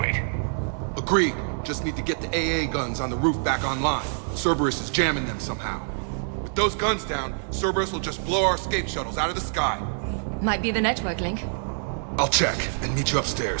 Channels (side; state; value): left; silent; 61 dB below the other